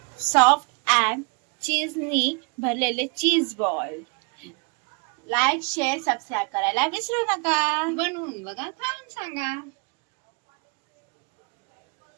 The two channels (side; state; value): left; quieter; 34.4 dB